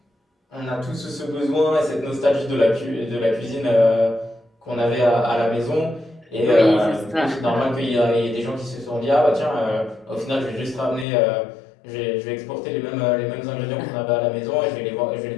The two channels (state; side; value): drops out; right; at 11.1 s